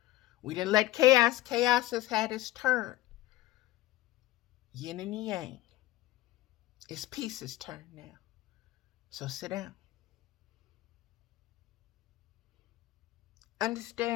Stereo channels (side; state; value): right; quieter; 16.3 dB